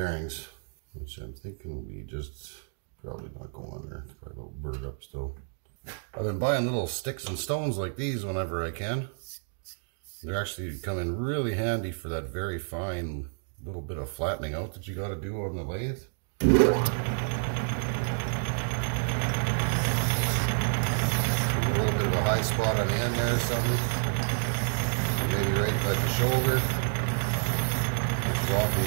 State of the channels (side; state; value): left; silent; 58 dB below the other